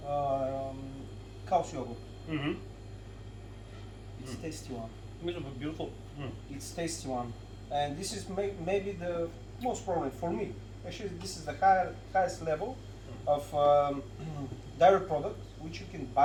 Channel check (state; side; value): identical; both; correlation 1.00